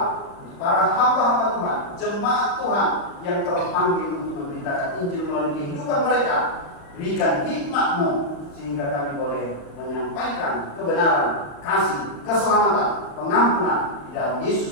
para hamba-hamba Tuhan, jemaat Tuhan yang terpanggil untuk memberitakan Injil melalui kehidupan mereka. Berikan hikmat-Mu sehingga kami boleh menyampaikan kebenaran, kasih, keselamatan, pengampunan di dalam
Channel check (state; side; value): late; right; 35 ms